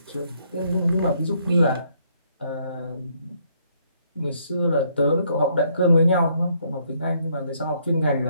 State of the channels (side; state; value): both; inverted; correlation -0.70